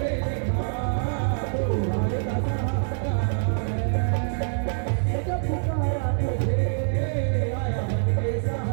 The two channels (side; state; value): left; silent; digital silence